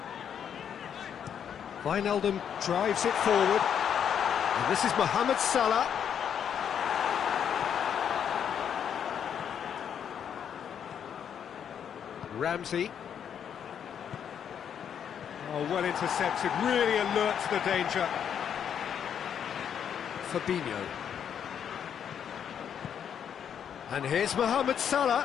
Wijnaldum drives it forward. And this is Mohamed Salah. Ramsey. Oh, well intercepted, really alert to the danger. Fabinho. And here's Mohamed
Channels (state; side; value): quieter; right; 8.4 dB